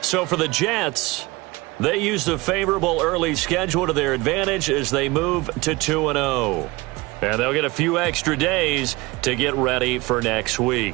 So for the Jets, they used a favorable early schedule to their advantage as they move to 2-0. And they'll get a few extra days to get ready for next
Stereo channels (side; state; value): left; quieter; 22.4 dB